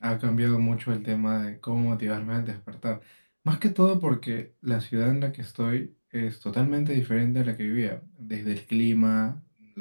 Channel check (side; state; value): both; inverted; correlation -1.00